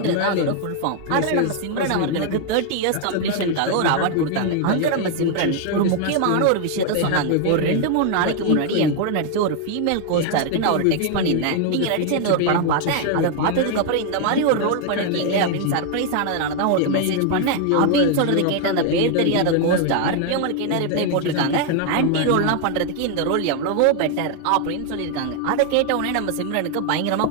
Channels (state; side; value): different; both; correlation 0.00